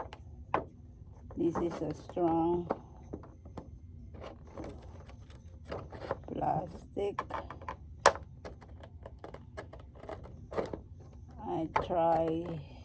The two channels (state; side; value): identical; both; correlation 1.00